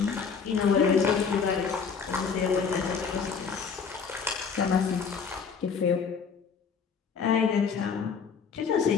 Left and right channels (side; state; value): right; quieter; 5.9 dB